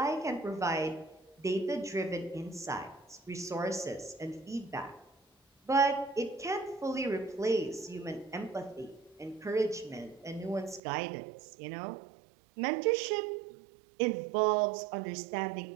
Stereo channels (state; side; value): drops out; left; at 10.8 s